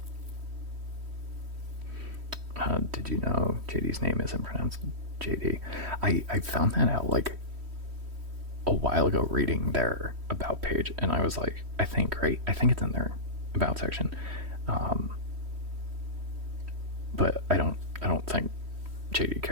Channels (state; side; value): late; left; 3.1 ms